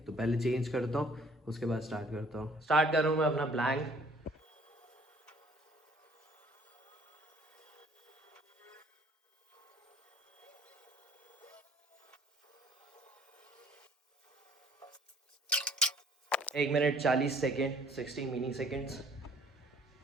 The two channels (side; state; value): both; normal; correlation 0.58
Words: तो पहले चेंज करता हूँ, उसके बाद स्टार्ट करता हूँ। स्टार्ट कर रहा हूँ मैं अपना प्लैंक। एक minute 40 second, 60 mini seconds.